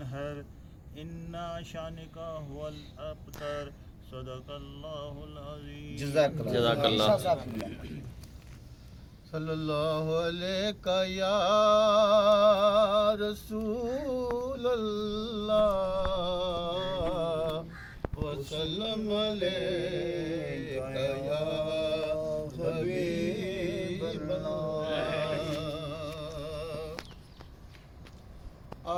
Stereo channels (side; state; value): both; identical; correlation 1.00